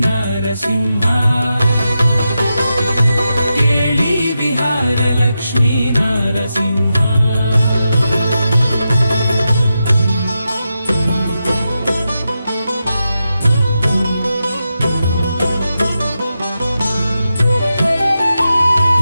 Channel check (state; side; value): inverted; both; correlation -0.89